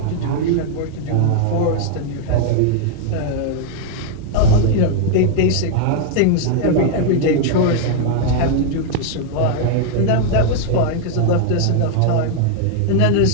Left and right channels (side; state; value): both; different; correlation 0.00